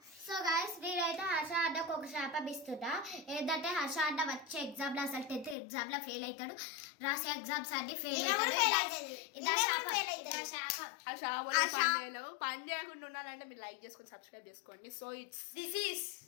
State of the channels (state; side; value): drops out; right; at 5.6 s